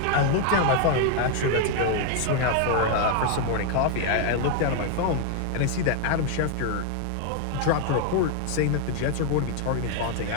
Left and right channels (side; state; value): both; different; correlation 0.00